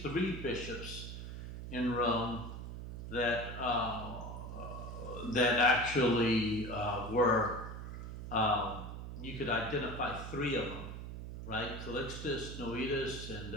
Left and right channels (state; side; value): noise; right; hum, 8 dB below the sound